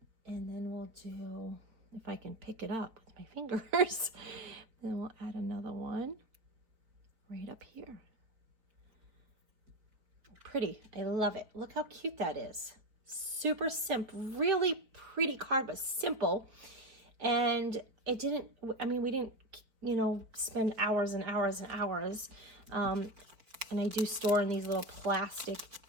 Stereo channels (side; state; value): left; late; 4.5 ms